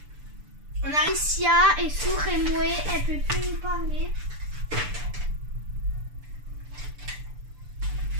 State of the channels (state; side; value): late; left; 6.8 ms